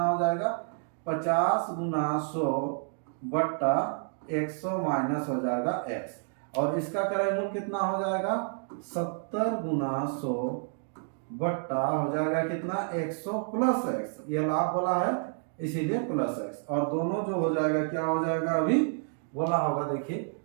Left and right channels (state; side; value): silent; left; 58 dB below the other